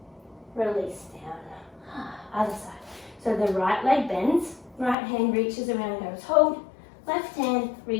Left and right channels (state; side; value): drops out; right; at 5.0 s